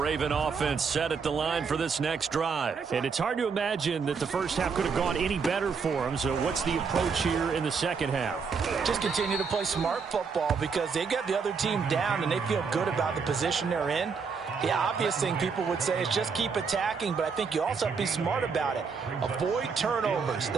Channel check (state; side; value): quieter; left; 5.5 dB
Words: offense set at the line for this next drive. And it's hard to imagine that the first half could have gone any better for them. So what's the approach here in the second half? Just continue to play smart football because they got the other team down and they feel good about the position they're in. The obvious thing people would say is just keep attacking, but I think you also have to be smart about it. Avoid turnovers.